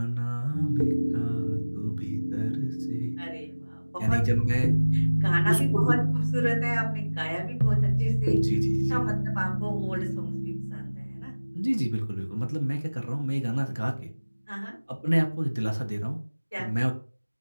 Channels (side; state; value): both; inverted; correlation -1.00